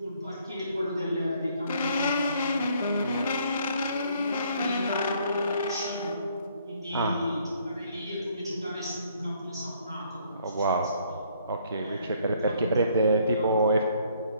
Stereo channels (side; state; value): both; inverted; correlation -0.65